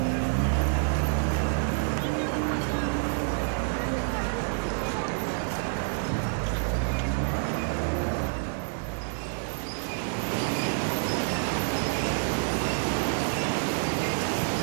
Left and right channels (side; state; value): left; silent; 59 dB below the other